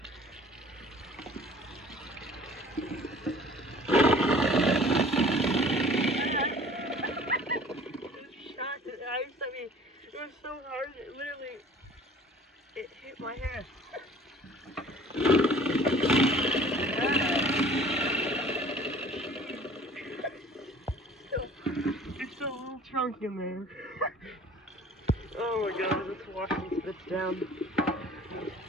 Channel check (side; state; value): both; normal; correlation 0.49